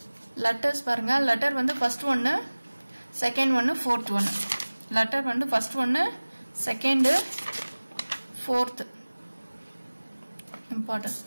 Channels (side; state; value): both; inverted; correlation -1.00